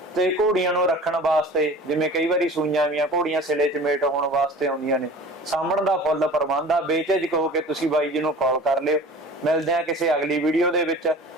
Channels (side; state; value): both; normal; correlation 0.41